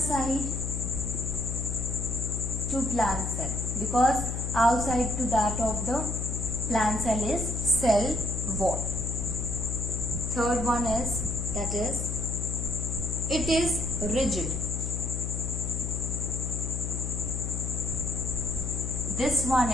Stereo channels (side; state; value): left; noise; hum, 3 dB below the sound